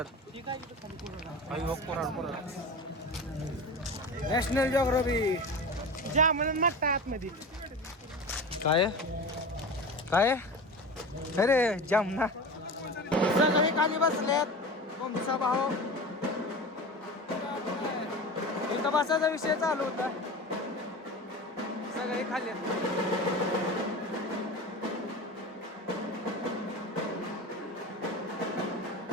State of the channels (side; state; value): both; normal; correlation 0.30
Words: नॅशनल जॉग्राफी आतमध्ये काय अरे जामना. सगळे खाली बसलेत. कोंबडीचा भाऊ इथं बसायचा विषय चालू होता. सगळे खाली